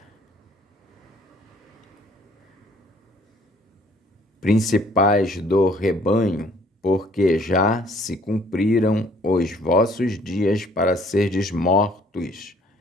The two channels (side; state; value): both; normal; correlation 0.60